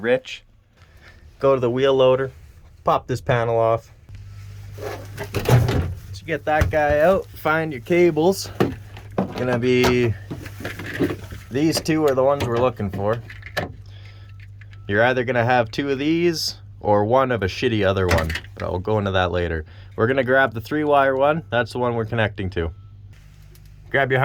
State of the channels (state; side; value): identical; both; correlation 1.00